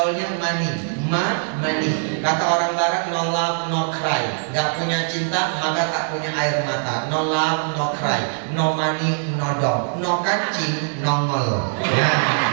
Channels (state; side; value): silent; left; 64 dB below the other